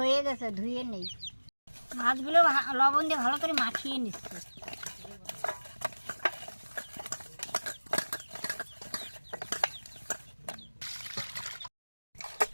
গেছে, ধুয়ে নেই। মাছগুলো লবণ দিয়ে ভালো করে মাখিয়ে নিচ্ছে।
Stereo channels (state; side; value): inverted; both; correlation -1.00